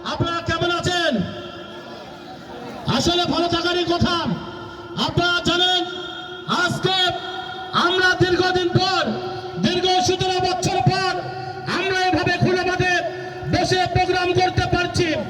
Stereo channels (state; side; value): identical; both; correlation 1.00